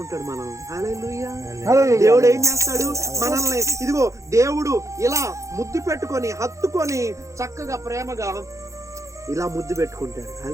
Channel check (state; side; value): late; left; 0.15 ms